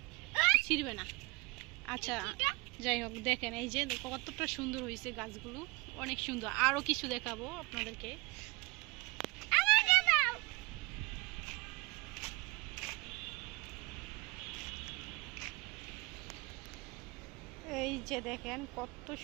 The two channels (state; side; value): quieter; left; 25.5 dB